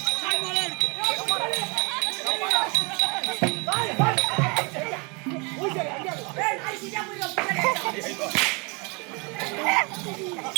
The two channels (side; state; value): left; quieter; 31.1 dB